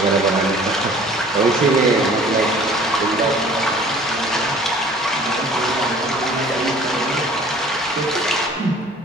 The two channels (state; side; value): normal; both; correlation 0.50